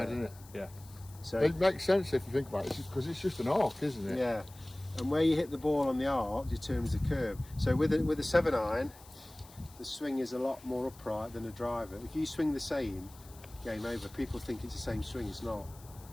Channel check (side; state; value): left; noise; hiss, 22 dB below the sound